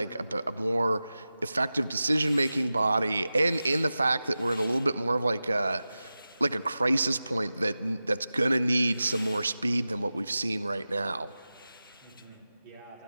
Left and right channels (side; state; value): both; inverted; correlation -0.95